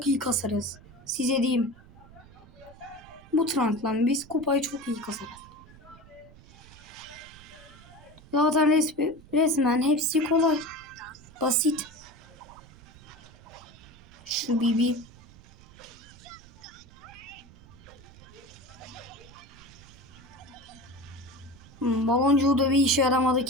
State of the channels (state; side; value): noise; right; rumble, 22 dB below the sound